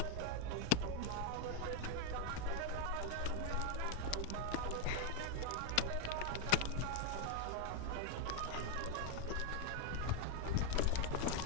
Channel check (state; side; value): different; both; correlation 0.01